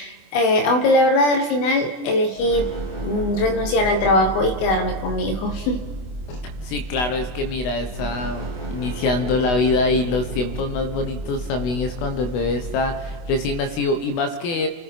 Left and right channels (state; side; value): late; right; 24 ms